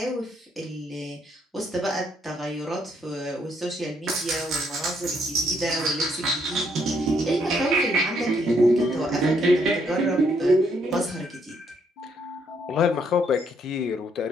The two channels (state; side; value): normal; both; correlation 0.71